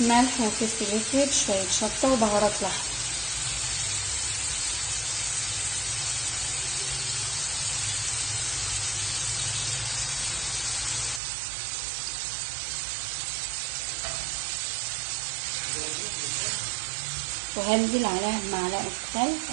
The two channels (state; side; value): drops out; left; at 11.2 s